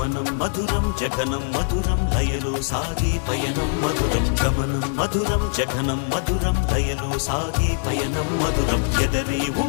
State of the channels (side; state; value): right; silent; digital silence